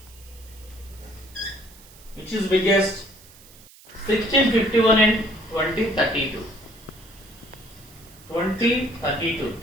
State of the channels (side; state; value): right; noise; hiss, 23 dB below the sound